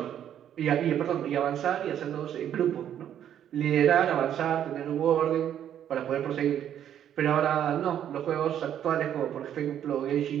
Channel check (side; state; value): left; quieter; 10.1 dB